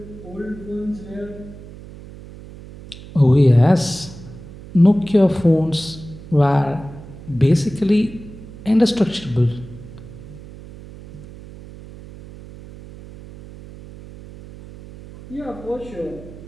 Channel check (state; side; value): noise; right; hum, 16 dB below the sound